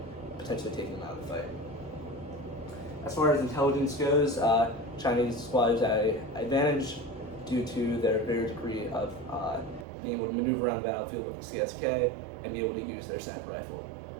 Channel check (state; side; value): drops out; left; at 9.9 s